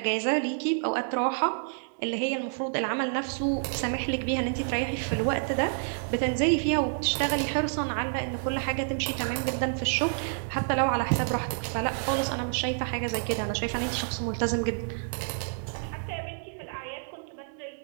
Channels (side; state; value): left; silent; digital silence